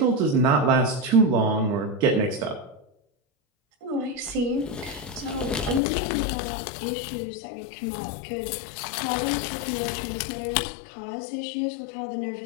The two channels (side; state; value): right; drops out; at 5.8 s